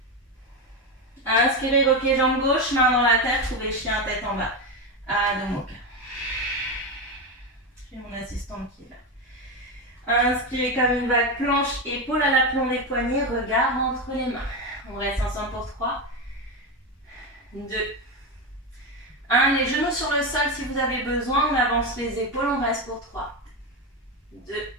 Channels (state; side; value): normal; both; correlation 0.14